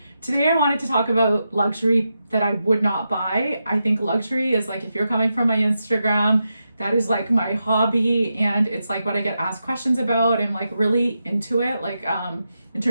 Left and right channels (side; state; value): both; inverted; correlation -0.87